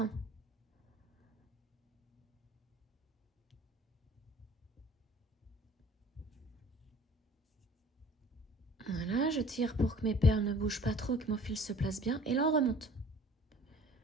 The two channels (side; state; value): both; normal; correlation 0.50